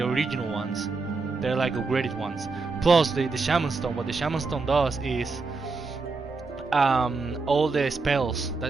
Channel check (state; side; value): quieter; left; 4.1 dB